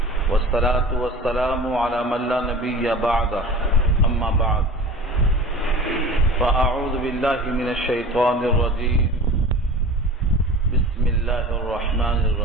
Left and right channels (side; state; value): both; normal; correlation 0.38